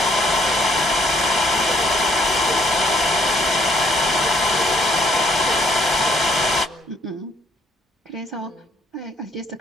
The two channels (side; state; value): both; normal; correlation 0.66